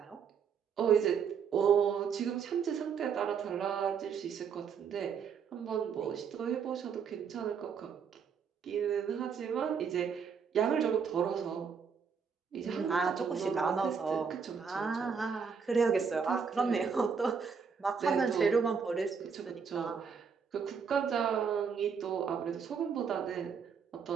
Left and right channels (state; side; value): quieter; left; 6.3 dB